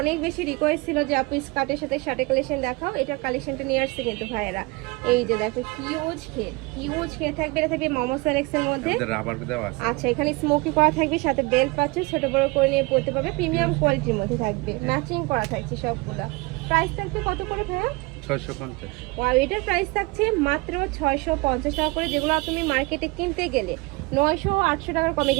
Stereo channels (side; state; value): left; quieter; 25.1 dB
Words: বেশি রিকোয়েস্ট ছিল যে আপু স্কার্টের সাথে শার্টের কালেকশন দেখাও। এটার কালেকশনটা নিয়ে আসছে কিন্তু ভাইয়েরা। এই যে দেখো, হিউজ খেয়ে থাকবে। এটা থাকবে মোমো সেলেক্সের মধ্যে। রাবার দেওয়া আছে। আচ্ছা, এখানে স্মোকি করা থাকবে, সাথে বেল্ট পাচ্ছে, ছোট বড় করে নিয়ে পড়তে পারবে। প্রিমিয়াম কোয়ালিটির মধ্যে থাকবে, ম্যাচিং করা থাকছে সবগুলা। প্রাইস থাকবে কত করে ভাইয়া? 650। আর এটার প্রাইস থাকছে মাত্র 650 টাকা করে। যেগুলো তুমি মার্কেটে কিনতে গেলে 900 800 টাকার কমে